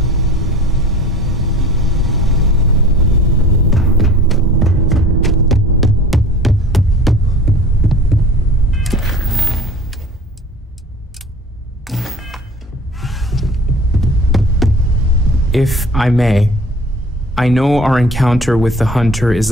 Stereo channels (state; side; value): normal; both; correlation 0.44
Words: If I may, I know our encounter with the Hunter is